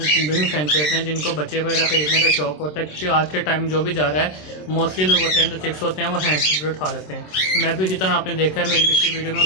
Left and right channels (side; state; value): right; late; 27 ms